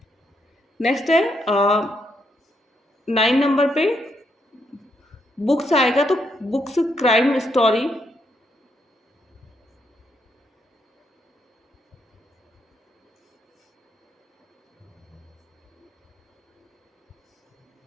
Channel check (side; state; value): both; normal; correlation 0.77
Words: नेक्स्ट है 9 नंबर पे बुक्स आएगा, तो बुक्स क्राइम स्टोरी।